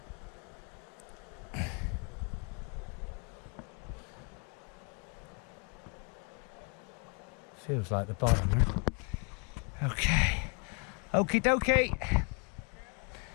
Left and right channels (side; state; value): right; quieter; 34.6 dB